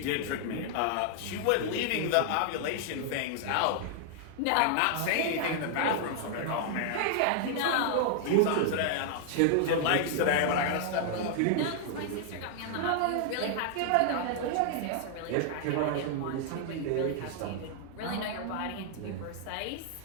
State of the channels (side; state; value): both; different; correlation 0.00